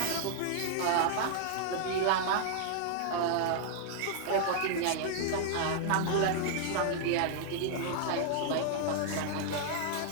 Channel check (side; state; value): both; different; correlation -0.01